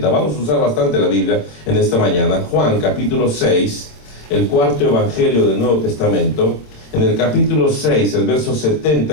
Vamos a usar bastante la Biblia en esta mañana. Juan capítulo 6, el cuarto evangelio del Nuevo Testamento. En el capítulo 6, el verso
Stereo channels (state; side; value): late; right; 26 ms